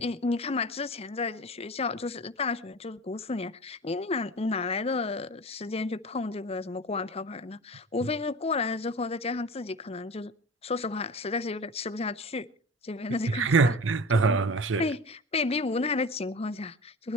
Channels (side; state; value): both; normal; correlation 0.34